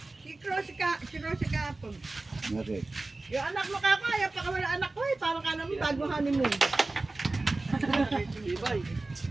Si Kapon. Okay. Yung anak mo kakaya, pa wala anak ko eh. Parang ka naman bago honeymoon.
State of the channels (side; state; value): left; quieter; 3.2 dB